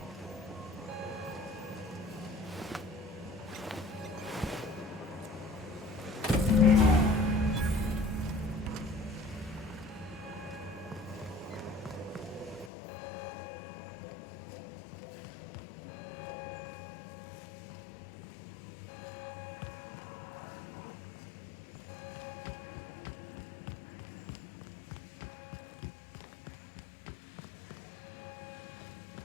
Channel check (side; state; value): right; drops out; at 12.7 s